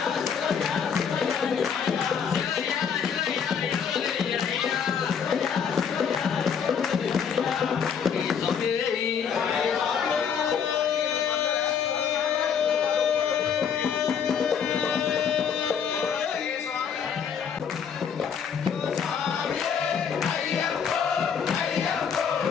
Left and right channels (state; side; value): quieter; right; 7.2 dB